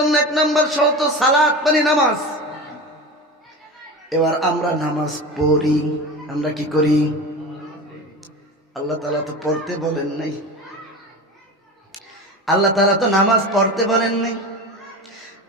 1 নাম্বার শর্ত সালাত মানে নামাজ। এবার আমরা নামাজ পড়ি, আমরা কি করি? আল্লাহ তাআলা তো পড়তে বলেন নাই, আল্লাহ তাআলা তো নামাজ পড়তে বলেন নাই।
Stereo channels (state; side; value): normal; both; correlation 0.29